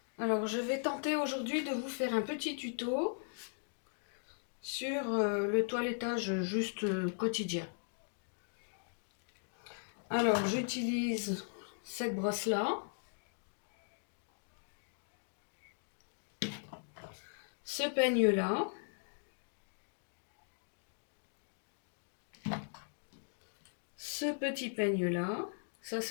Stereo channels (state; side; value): silent; right; digital silence